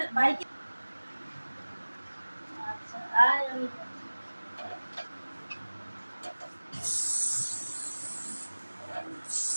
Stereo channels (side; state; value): both; inverted; correlation -1.00